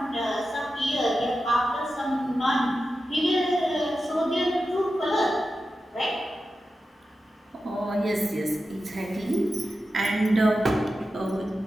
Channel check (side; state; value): both; normal; correlation 0.91